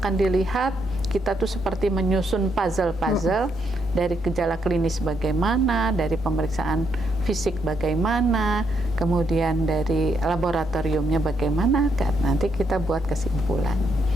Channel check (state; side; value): normal; both; correlation 0.77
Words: dilihat, kita tuh seperti menyusun puzzle-puzzle dari gejala klinis bagaimana, dari pemeriksaan fisik bagaimana, kemudian dari laboratoriumnya bagaimana, kan nanti kita buat kesimpulan.